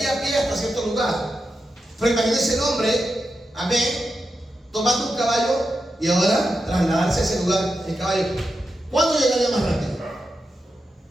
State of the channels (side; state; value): both; normal; correlation 0.88